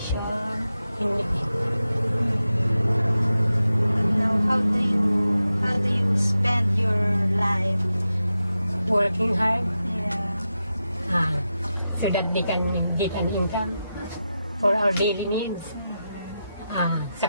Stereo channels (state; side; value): inverted; both; correlation -0.90